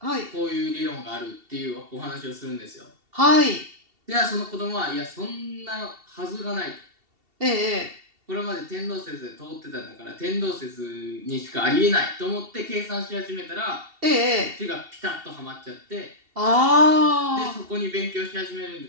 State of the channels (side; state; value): left; late; 2.7 ms